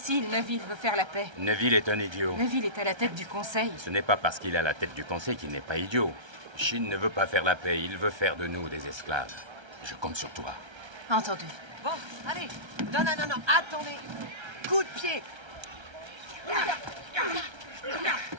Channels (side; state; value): left; late; 1.3 ms